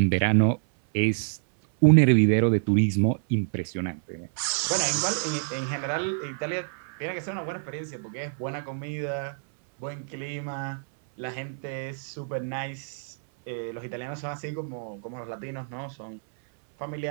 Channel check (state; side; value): silent; left; 60 dB below the other